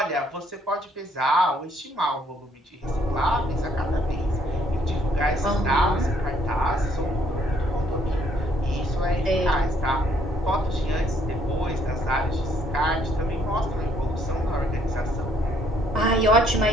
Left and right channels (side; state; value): both; normal; correlation 0.67